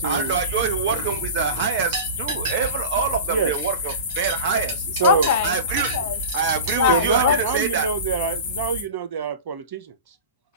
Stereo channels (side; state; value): both; inverted; correlation -0.31